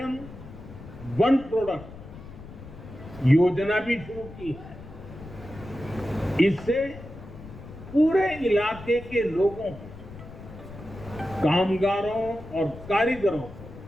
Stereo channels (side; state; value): left; noise; rumble, 15 dB below the sound